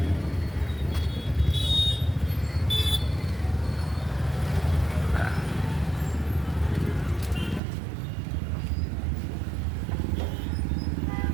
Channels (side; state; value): left; drops out; at 7.6 s